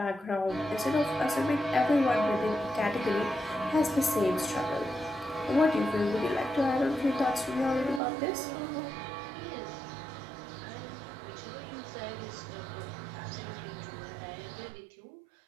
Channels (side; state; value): left; drops out; at 8.0 s